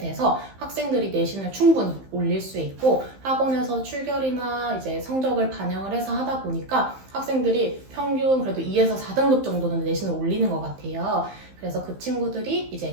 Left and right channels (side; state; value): left; late; 15 ms